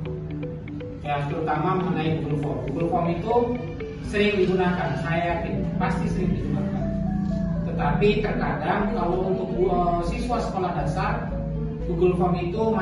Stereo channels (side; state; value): both; identical; correlation 1.00